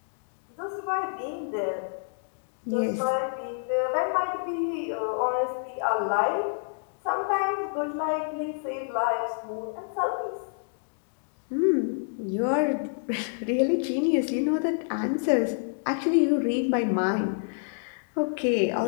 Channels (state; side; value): silent; right; digital silence